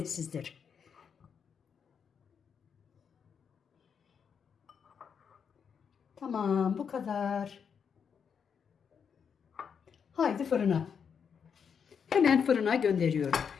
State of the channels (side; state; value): right; quieter; 6.9 dB